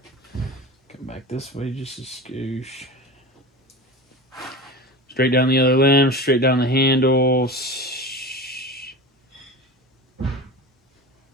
Come back this way just a skoosh. Straight down the other limb, straight down the handles.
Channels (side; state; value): both; normal; correlation 0.30